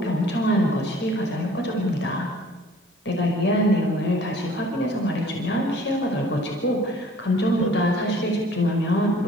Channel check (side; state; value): both; normal; correlation 0.53